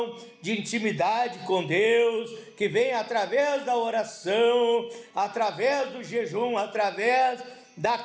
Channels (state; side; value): identical; both; correlation 1.00